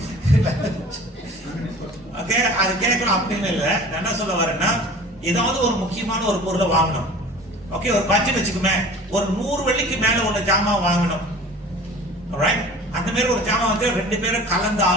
ஓகே, அது கேட்கணும் அப்படின்னு இல்லை. நான் என்ன சொல்ல வரேன்னா, ஏதாவது ஒரு முக்கியமான ஒரு பொருளை வாங்கணும். ஓகே, ஒரு பட்ஜெட் வச்சுக்குமே, ஒரு 100 வெள்ளிக்கு மேல ஒரு ஜாமான் வாங்கணும். ரைட்? அந்த மாதிரி ஒரு ஜாமான் வந்து ரெண்டு பேரும் கலந்து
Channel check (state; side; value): normal; both; correlation 0.43